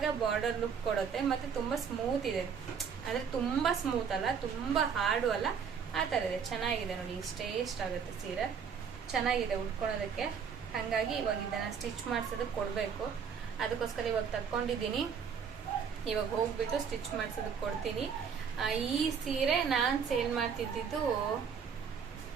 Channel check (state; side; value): quieter; left; 6.7 dB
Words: ಬಾರ್ಡರ್ ಲುಕ್ ಕೊಡುತ್ತೆ, ಮತ್ತು ತುಂಬ ಸ್ಮೂತ್ ಇದೆ. ಅಂದರೆ ತುಂಬ ಸ್ಮೂತ್ ಅಲ್ಲ, ತುಂಬ ಹಾರ್ಡು ಅಲ್ಲ, ಆ ಥರ ಇದೆ. ಚೆನ್ನಾಗಿದೆ ನೋಡಿ, ಇಷ್ಟೇ ಇಷ್ಟ ಆಗುತ್ತೆ ಸೀರೆ, ಚೆನ್ನಾಗಿದೆ ಉಟ್ಕೊಳೋದಕ್ಕೆ. ಹಾಗಾಗಿ ಇವಾಗ ಇದನ್ನು ಸ್ಟಿಚ್ ಮಾಡಿಸೋದಕ್ಕೆ ಕೊಡಬೇಕು. ಅದಕ್ಕೋಸ್ಕರ ಇವಾಗ ತಕ್ಕೊಂಡಿದ್ದೀನಿ. ಇವಾಗ ಹೋಗ್ಬಿಟ್ಟು ಸ್ಟಿಚ್ ಮಾಡಿಸೋದಕ್ಕೆ ಕೊಡ್ತೀನಿ. ಈ ಸೀರೆ ನಾನು ಸೇಲ್ ಮಾಡ್ತಿದ್ದಿದ್ದು